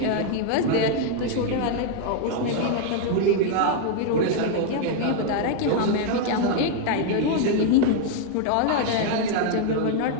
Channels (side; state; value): both; different; correlation 0.00